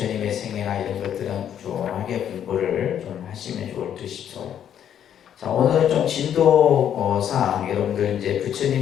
생애나 이런 것들은 꾸준하게 공부를 좀 하시면 좋을 듯 싶어요. 자, 오늘은 좀 진도상 여러분들 이제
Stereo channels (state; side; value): quieter; right; 9.6 dB